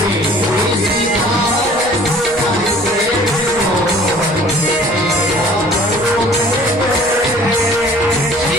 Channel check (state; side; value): normal; both; correlation 0.51